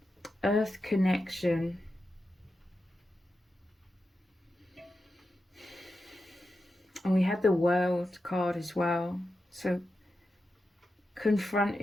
Earth connection. And we had the World card as well. So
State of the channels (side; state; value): both; normal; correlation 0.89